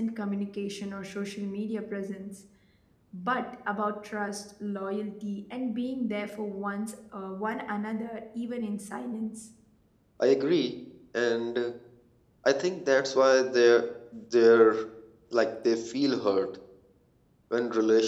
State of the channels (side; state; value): both; identical; correlation 1.00